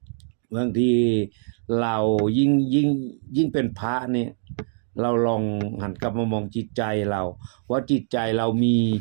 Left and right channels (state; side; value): silent; left; 63 dB below the other